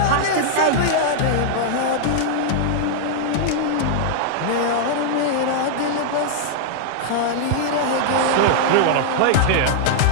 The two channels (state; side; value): different; both; correlation -0.01